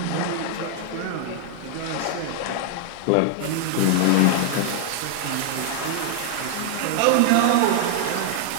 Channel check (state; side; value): different; both; correlation 0.00